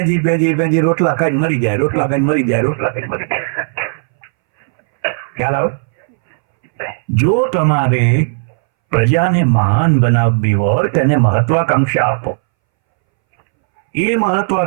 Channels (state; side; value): silent; left; 66 dB below the other